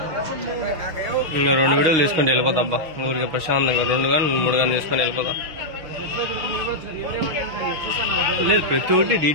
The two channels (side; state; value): left; late; 6.4 ms